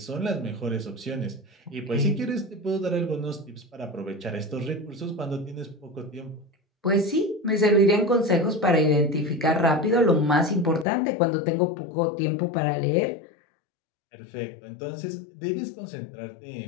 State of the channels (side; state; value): right; drops out; at 10.9 s